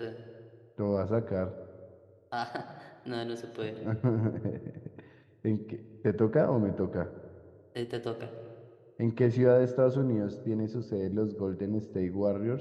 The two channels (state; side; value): identical; both; correlation 1.00